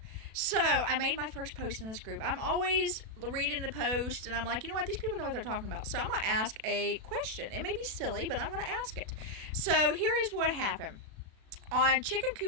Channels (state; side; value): late; left; 37 ms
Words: So I made my first post in this group. I'm always reading the post and I'm like, you know what? These people know what they're talking about. So I'm going to ask a question. It may be silly, but I'm going to ask it. So here is what happened. On chicken